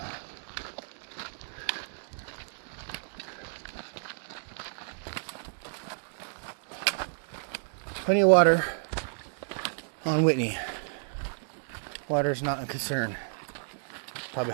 Plenty of water on Whitney. Water is not a concern. Probably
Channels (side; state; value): left; silent; digital silence